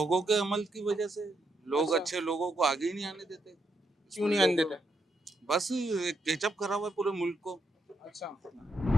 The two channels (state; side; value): normal; both; correlation 0.79